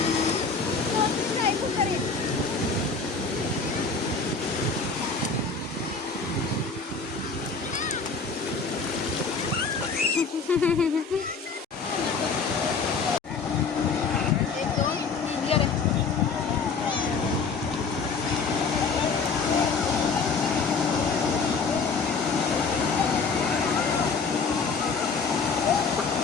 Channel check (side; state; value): right; quieter; 4.8 dB